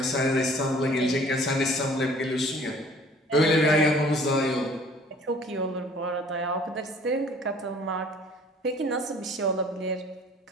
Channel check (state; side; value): normal; both; correlation 0.53